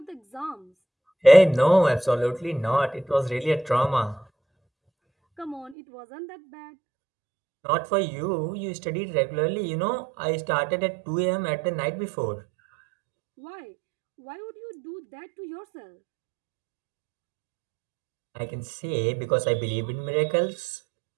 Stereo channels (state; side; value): drops out; left; at 5.8 s